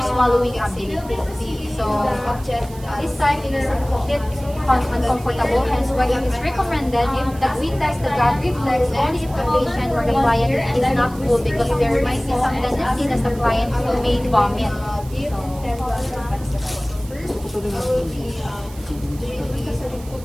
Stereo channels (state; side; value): noise; right; hiss, 21 dB below the sound